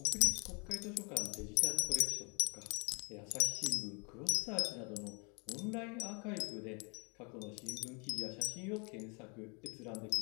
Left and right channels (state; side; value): quieter; right; 32.6 dB